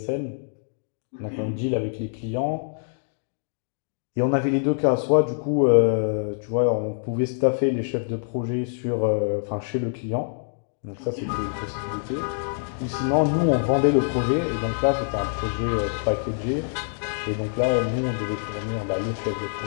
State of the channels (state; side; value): silent; right; digital silence